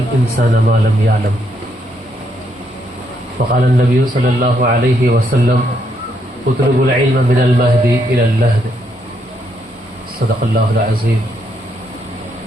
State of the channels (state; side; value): normal; both; correlation 0.75